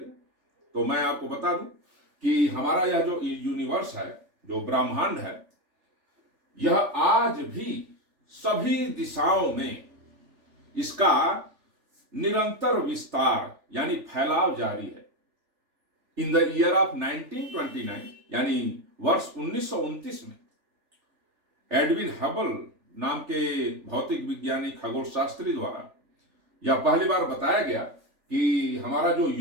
तो मैं आपको बता दूं कि हमारा यह जो यूनिवर्स है, जो ब्रह्मांड है, यह आज भी सभी दिशाओं में इसका निरंतर विस्तार यानी फैलाव जारी है। इन द ईयर ऑफ 1929 यानी वर्ष 1929 में एडविन हबल नाम के भौतिक विज्ञानी खगोल शास्त्री द्वारा यह पहली बार बताया गया कि हमारा जो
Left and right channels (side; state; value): left; late; 3.4 ms